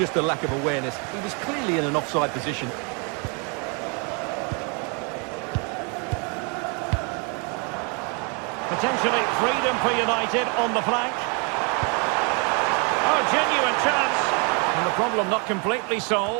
a lack of awareness. He was clearly in an offside position. Potentially freedom for United on the flank. Oh, genuine chance. And the problem not completely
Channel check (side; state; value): left; quieter; 34.6 dB